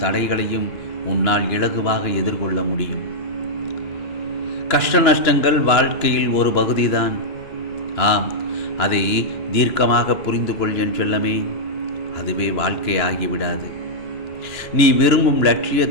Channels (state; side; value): late; right; 3.0 ms